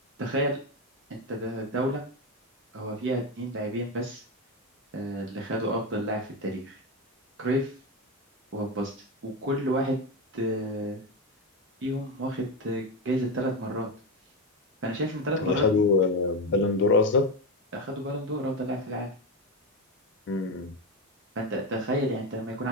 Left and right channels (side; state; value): both; normal; correlation 0.14